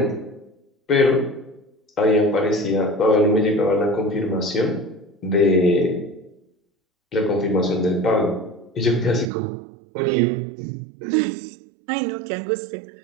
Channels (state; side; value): drops out; left; at 9.3 s